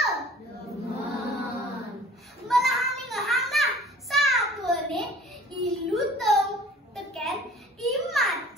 Demen. Belahan ngehang nah, satwa ne ilu tong teken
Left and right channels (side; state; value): both; normal; correlation 0.49